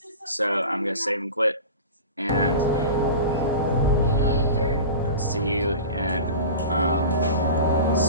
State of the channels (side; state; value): both; inverted; correlation -0.32